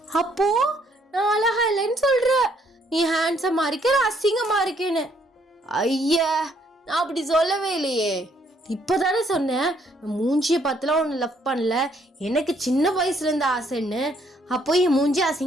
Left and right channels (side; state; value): both; normal; correlation 0.68